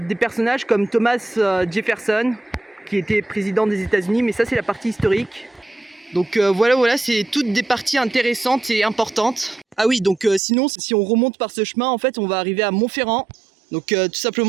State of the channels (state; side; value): drops out; left; at 10.4 s